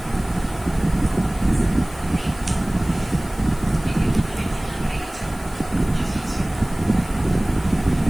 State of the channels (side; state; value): left; noise; hiss, 20 dB below the sound